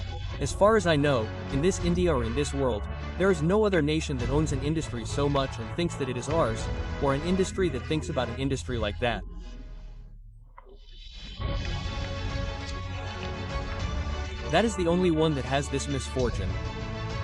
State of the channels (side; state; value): both; identical; correlation 1.00